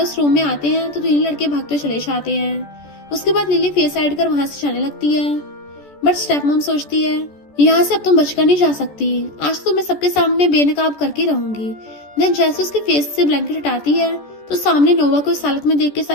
उस रूम में आते हैं तो 3 लड़के भागते चले जाते हैं। उसके बाद लिली फेस साइड कर वहां से जाने लगती है, बट स्टेप मॉम सोचती है, यहाँ से अब तुम बचकर नहीं जा सकती, आज तो मैं सबके सामने बेनकाब करके रहूंगी। देन जैसे उसके फेस से ब्लैंकेट हटाती है तो सामने नोवा को इस हालत में देख के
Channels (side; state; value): right; late; 14 ms